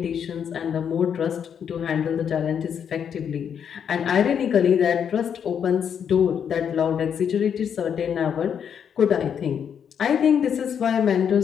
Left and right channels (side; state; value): right; quieter; 7.9 dB